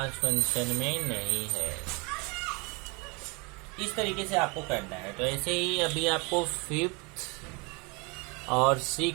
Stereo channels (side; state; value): left; quieter; 29.6 dB